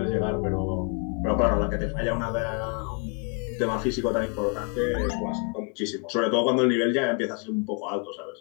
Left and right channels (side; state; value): right; quieter; 34.8 dB